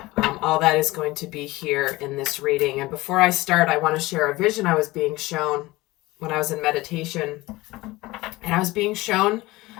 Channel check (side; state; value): right; quieter; 20.0 dB